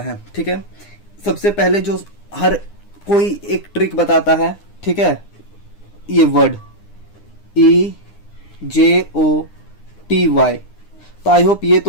ठीक है। सबसे पहले जो हर कोई एक ट्रिक बताता है, ठीक है, ये वर्ड EJOTY, तो आई होप ये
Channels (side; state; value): right; late; 9.8 ms